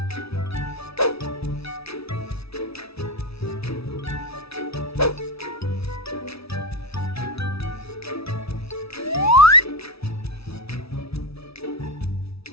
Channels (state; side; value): late; right; 0.77 ms